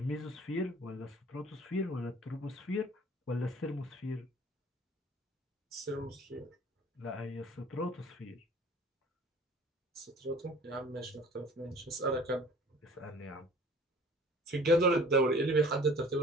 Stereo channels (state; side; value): normal; both; correlation 0.50